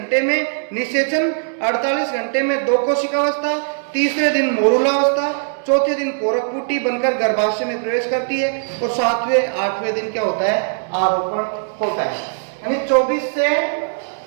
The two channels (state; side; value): silent; left; digital silence